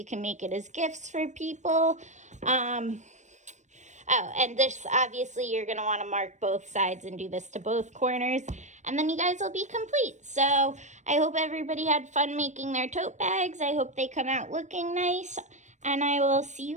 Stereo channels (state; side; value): late; left; 0.34 ms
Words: can make it as gifts for people. Oh, and this, obviously, you're going to want to mark both sides and do this to both corners. And then you guys will be complete. So I hope everybody had fun making their tote bags. I hope they come out looking nice. And I will see